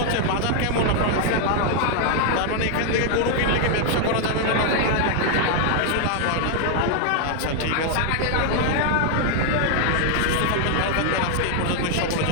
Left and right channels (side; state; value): both; different; correlation 0.00